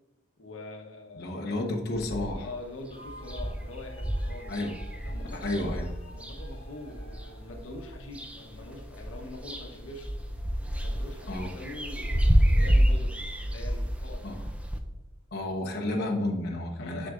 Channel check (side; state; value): both; normal; correlation 0.89